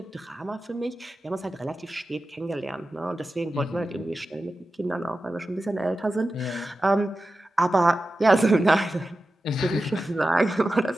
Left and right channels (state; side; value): normal; both; correlation 0.93